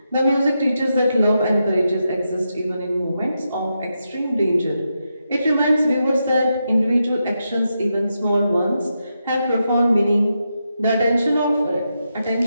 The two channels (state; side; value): inverted; both; correlation -0.85